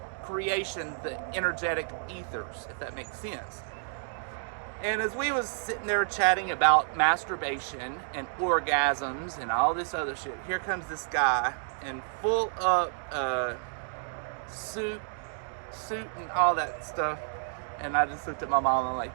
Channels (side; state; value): left; silent; digital silence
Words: creation, the energetic ethers, if that makes sense. And as we was sitting there chatting about masturbation and orgasms and all this other shit, here comes this guy in full up suit and all that stuff. And I just looked at my mom and I'm like,